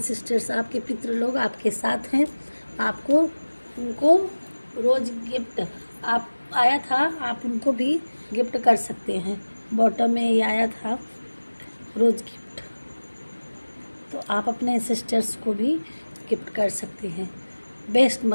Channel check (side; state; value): both; inverted; correlation -1.00